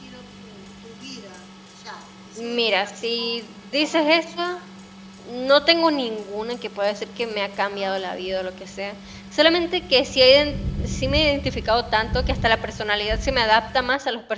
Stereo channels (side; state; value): both; identical; correlation 1.00